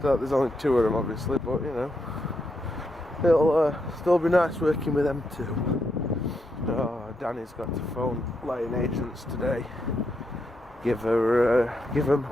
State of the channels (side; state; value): both; normal; correlation 0.81